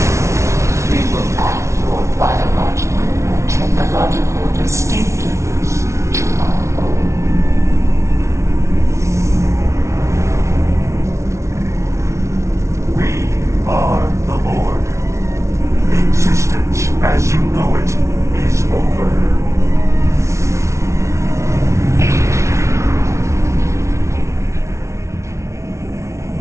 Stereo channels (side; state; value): left; late; 0.14 ms